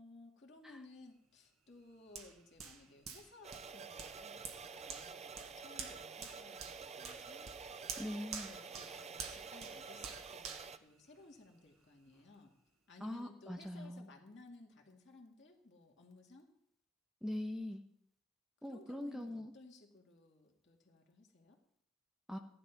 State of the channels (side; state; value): both; normal; correlation 0.67